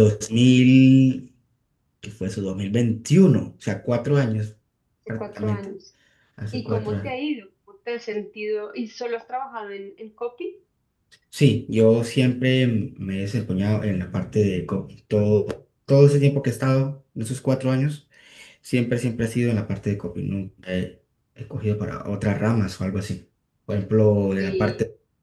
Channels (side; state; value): both; identical; correlation 1.00